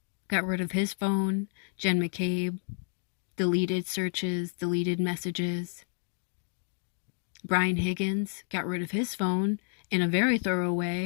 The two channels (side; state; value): right; silent; 58 dB below the other